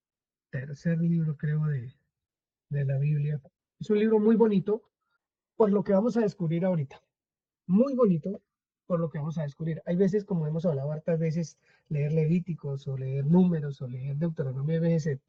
tercer libro, creo, de la Biblia. Es un libro muy bonito por lo que vamos a descubrir ahorita. Muy bonito por lo que vamos a descubrir. Hay veces, como hemos hablado hartas veces, leer Levíticos o leer Números o leer Deuteronomio a veces se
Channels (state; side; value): identical; both; correlation 1.00